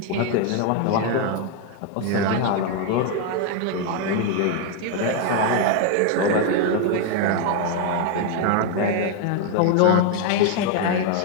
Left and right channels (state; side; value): different; both; correlation 0.01